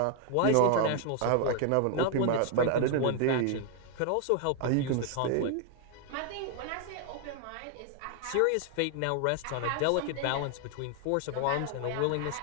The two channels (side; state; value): both; different; correlation 0.00